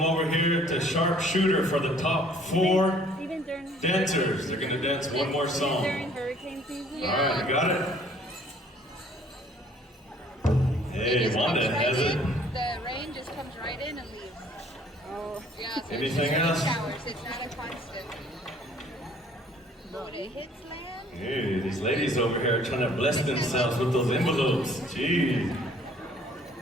over here to Sharpshooter for the top 4 Even during dancers. They're gonna dance one more song. during hurricane season. Alright, you got it? It Hey, just Wanda comes right has it. in. The rain just comes right in and leaves. Oh. Yeah, so Anything it's just else? showers. It's not a constant. But when it hits land, Hey, these ladies over here are trying to bless themselves with those envelopes. Gee.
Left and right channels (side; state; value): both; normal; correlation 0.57